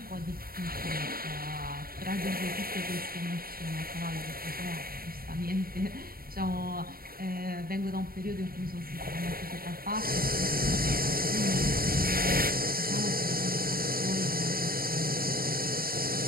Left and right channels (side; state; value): left; late; 0.43 ms